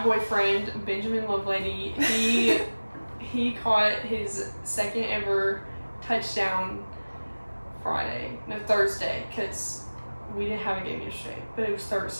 boyfriend Benjamin Lovelady. He caught his second ever touchdown Thursday, because we didn't have a game yesterday, but it was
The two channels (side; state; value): both; inverted; correlation -1.00